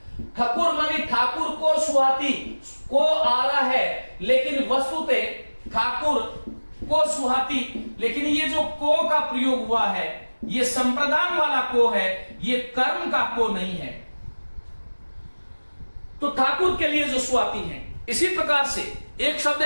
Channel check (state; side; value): inverted; both; correlation -1.00